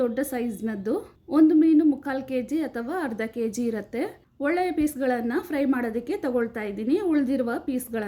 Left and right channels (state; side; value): identical; both; correlation 1.00